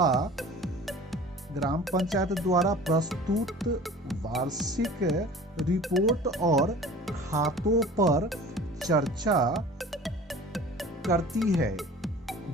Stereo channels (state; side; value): normal; both; correlation 0.43